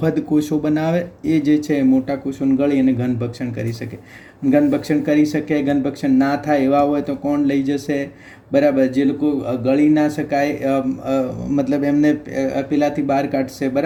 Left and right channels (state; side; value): identical; both; correlation 1.00